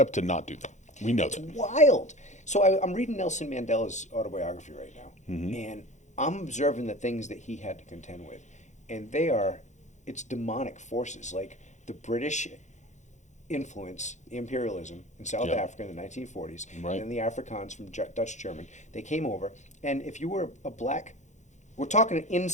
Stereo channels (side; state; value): right; late; 0.34 ms